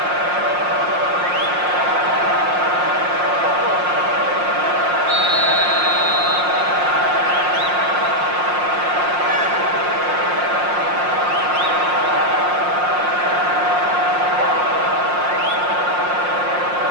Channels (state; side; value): late; left; 5.6 ms